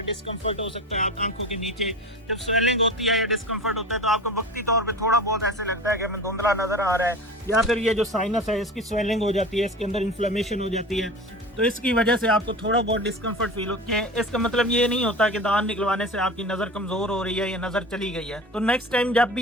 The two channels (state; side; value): normal; both; correlation 0.33